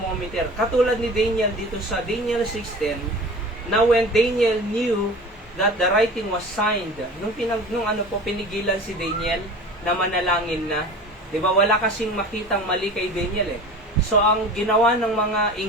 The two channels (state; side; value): normal; both; correlation 0.38